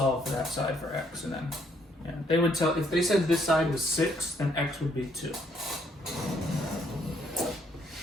for that side for x, and then they would tell. If they said this side was 6, then x would be 2,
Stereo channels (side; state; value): both; normal; correlation 0.69